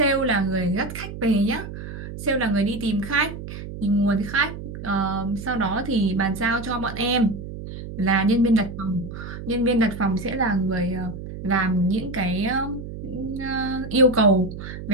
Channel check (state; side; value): noise; right; hum, 10 dB below the sound